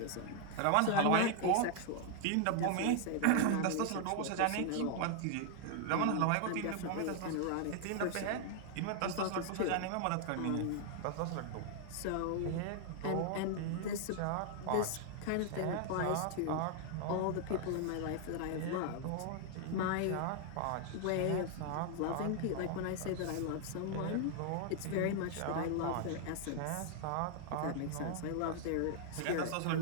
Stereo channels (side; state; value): both; different; correlation 0.00